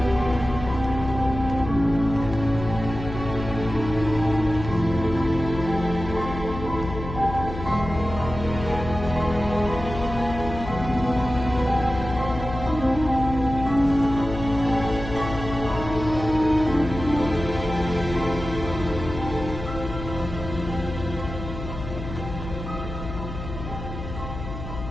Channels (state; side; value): noise; left; hum, 9 dB below the sound